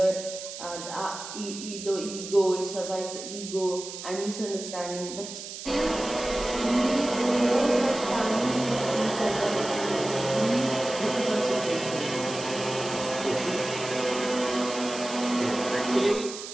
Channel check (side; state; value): right; noise; hiss, 10 dB below the sound